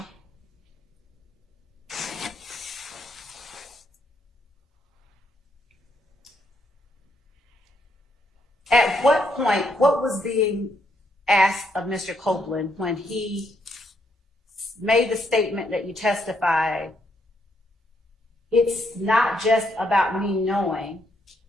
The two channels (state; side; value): normal; both; correlation 0.75